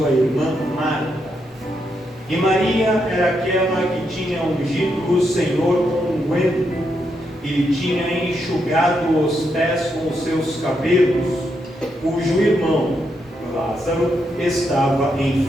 irmã Marta. E Maria era aquela que tinha ungido o Senhor com unguento e lhe tinha enxugado os pés com os seus cabelos, cujo irmão Lázaro estava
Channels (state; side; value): normal; both; correlation 0.81